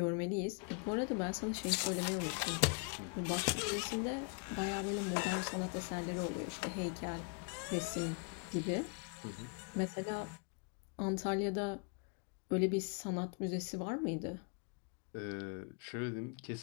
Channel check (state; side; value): quieter; right; 31.8 dB